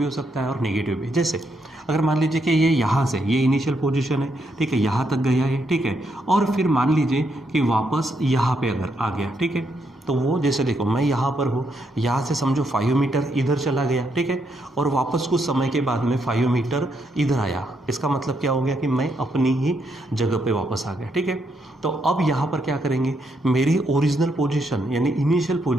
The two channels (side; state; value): both; normal; correlation 0.77